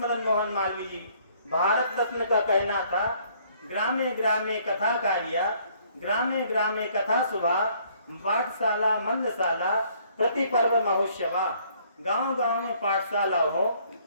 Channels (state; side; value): inverted; both; correlation -0.63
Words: मोहन मालवीय जी भारत रत्न का कहना था, ग्रामे ग्रामे कथा कार्या, ग्रामे ग्रामे कथा सुभा, पाठशाला मंदशाला प्रति पर्व महोत्सवा। गांव गांव में पाठशाला हो,